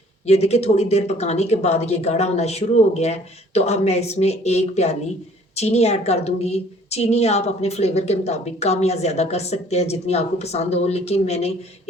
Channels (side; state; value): both; normal; correlation 0.57